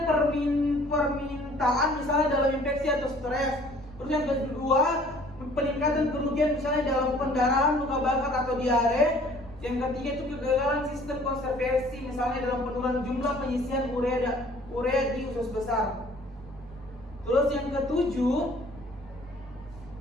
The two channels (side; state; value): left; noise; rumble, 26 dB below the sound